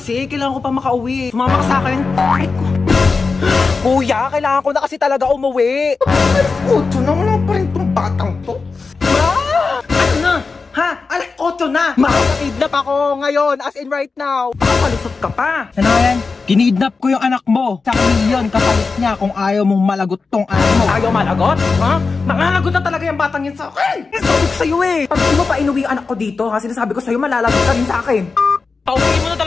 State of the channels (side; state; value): right; quieter; 4.4 dB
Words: Kailangan ko pa makauwi. Sumama ka sa akin. Ay, kuya, kailangan ko na kasi talaga umuwi. Alas 8 na, wala pa rin tong batang to. Ma! Ano na? Ha? Alas 8 na! Makakidnap ako ngayon, as in right now. Papalusot ka pa. Ano yan? Kinidnap ko yung anak mo. Sa milyon kapalit niya kung ayaw mong malagot tong anak mo. Ayaw malagot? Ha? Malalagot na talaga yung batang yun sa akin. Sabi ko sa'yo eh. Pag di mo pa inuwi yung anak ko dito, ha? Sinasabi ko sa'yo, malalagot ka rin sa akin. Pauwi mo na